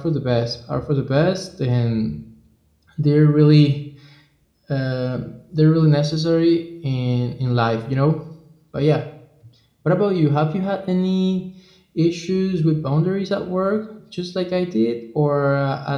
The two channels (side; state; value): both; identical; correlation 1.00